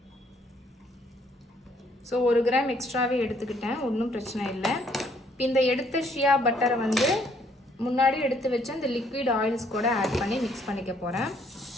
ஸோ 1 கிராம் எக்ஸ்ட்ராவே எடுத்துக்கிட்டேன், ஒன்றும் பிரச்சனை இல்லை. இப்போ இந்த எடுத்த ஷியா பட்டரை முன்னாடி எடுத்து வச்சு இந்த லிக்விட் ஆயில்ஸ் கூட ஆட் பண்ணி மிக்ஸ் பண்ணிக்க போகிறேன்.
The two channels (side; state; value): both; normal; correlation 0.66